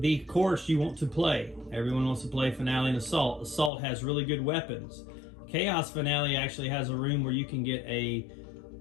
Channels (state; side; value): drops out; right; at 3.7 s